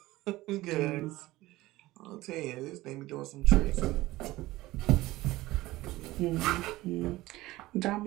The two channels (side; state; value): left; quieter; 18.1 dB